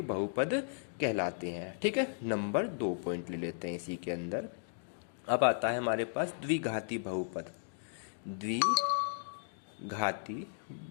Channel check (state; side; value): silent; right; digital silence